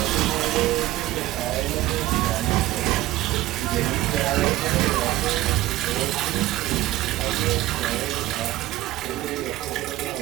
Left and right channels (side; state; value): left; quieter; 16.2 dB